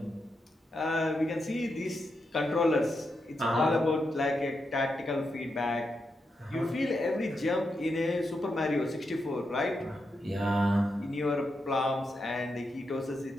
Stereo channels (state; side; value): normal; both; correlation 0.85